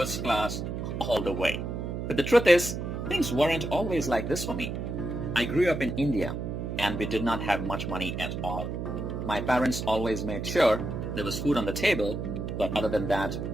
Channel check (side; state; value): right; noise; hum, 4 dB below the sound